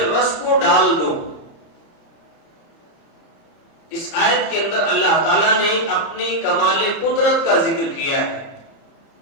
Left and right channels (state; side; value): late; right; 30 ms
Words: رس کو ڈال دو۔ اس آیت کے اندر اللہ تعالیٰ نے اپنی کمال قدرت کا ذکر کیا ہے